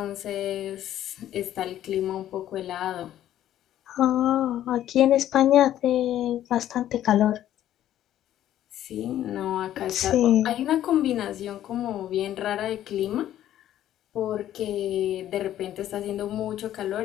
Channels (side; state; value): right; quieter; 12.1 dB